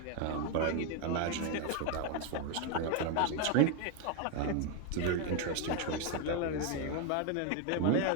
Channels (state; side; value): different; both; correlation 0.01